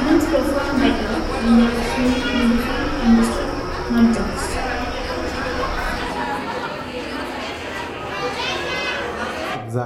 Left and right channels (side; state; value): both; identical; correlation 1.00